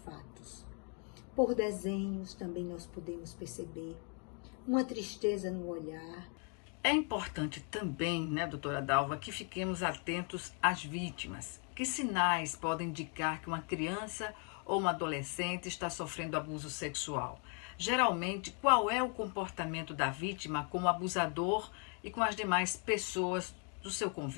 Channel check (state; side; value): quieter; right; 38.7 dB